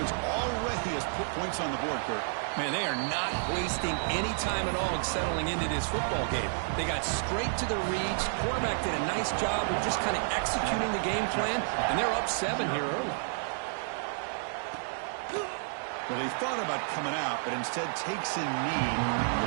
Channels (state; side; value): silent; left; digital silence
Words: already has put points on the board, Kurt. Man, they are not wasting any time at all settling into this football game. They got straight to the reads. Quarterback did a nice job of just kind of executing the game plan, and they're up 7 here early. Well, they thought about coming out, but instead takes a knee to